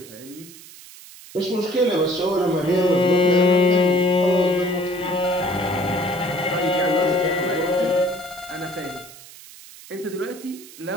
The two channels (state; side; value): noise; right; hiss, 19 dB below the sound